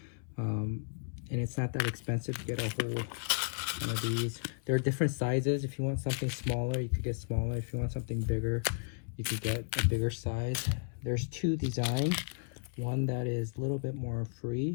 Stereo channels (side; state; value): right; silent; 55 dB below the other